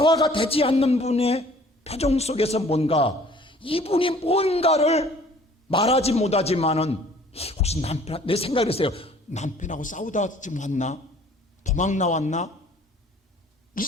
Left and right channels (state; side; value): normal; both; correlation 0.53